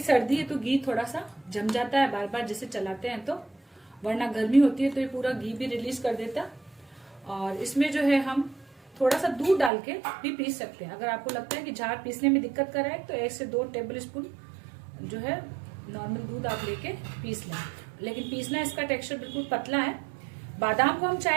है तो घी थोड़ा सा जम जाता है बार बार जैसे चलाते हैं, तो वरना गर्मी होती है तो ये पूरा घी भी रिलीज कर देता। और इसमें जो है हम थोड़ा सा दूध डाल के भी पीस सकते हैं। अगर आपको लगता है कि जार पीसने में दिक्कत कर रहा है तो 1 से 2 टेबल स्पून जो है नॉर्मल दूध आप लेके पीस लें। लेकिन पीसना इसका टेक्सचर बिल्कुल पतला है। बादाम को हम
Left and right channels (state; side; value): drops out; left; at 9.7 s